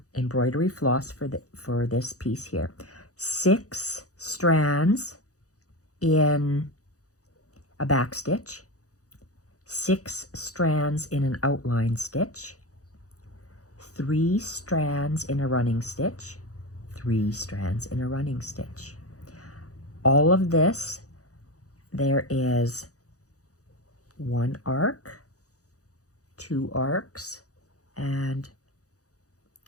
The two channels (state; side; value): late; right; 0.66 ms